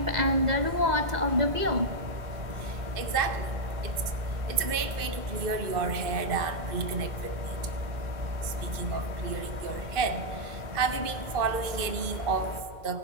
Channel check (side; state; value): left; late; 2.5 ms